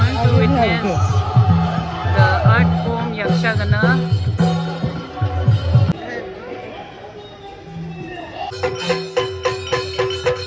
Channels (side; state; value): both; identical; correlation 1.00